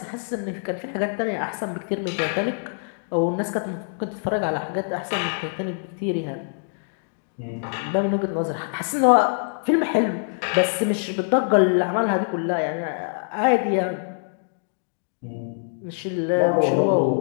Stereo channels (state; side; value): silent; right; digital silence